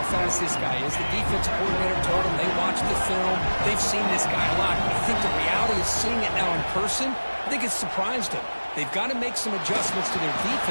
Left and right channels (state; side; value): inverted; both; correlation -1.00